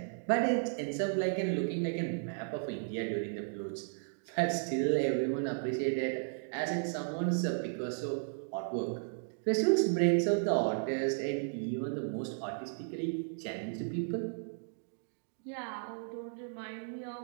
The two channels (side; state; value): left; silent; digital silence